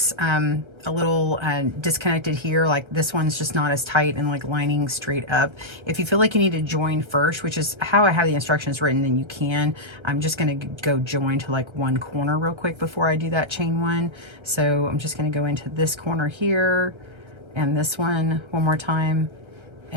a little disconnected here, like this one's just not as tight and like lining straight up. If you feel like you need to join first, which is how I have the instructions written, then you can. I'm just gonna go join to like one corner real quick before I do that chain 1. So I'm just gonna go into this corner here and this one more time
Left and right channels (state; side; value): late; left; 1.3 ms